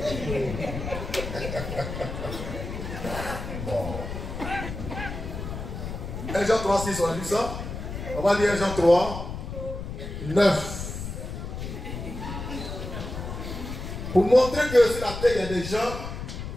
Bon. 1 Jean 3, 6, on a lu ça. On va lire 1 Jean 3, 9. Pour montrer que sur la terre, il y a des gens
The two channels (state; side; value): noise; left; rumble, 7 dB below the sound